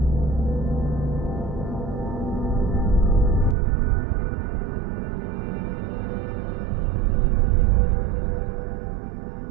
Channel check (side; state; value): left; drops out; at 3.6 s